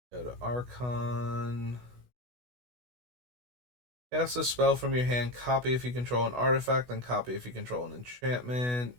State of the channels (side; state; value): left; late; 16 ms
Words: Go to Archon. Cast a spell from your hand. Copy if you control an artifact, then copy if you control an enchantment.